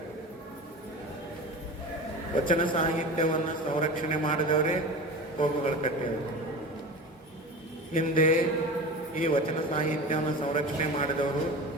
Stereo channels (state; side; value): normal; both; correlation 0.31